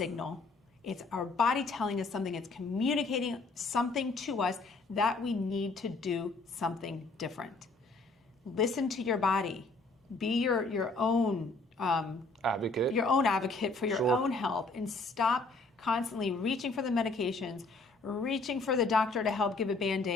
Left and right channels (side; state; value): right; quieter; 3.5 dB